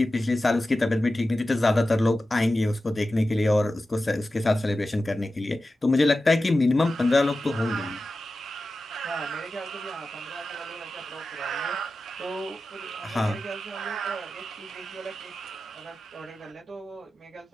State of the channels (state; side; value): normal; both; correlation 0.93